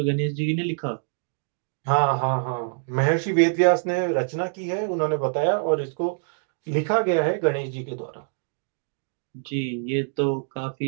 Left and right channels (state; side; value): silent; left; digital silence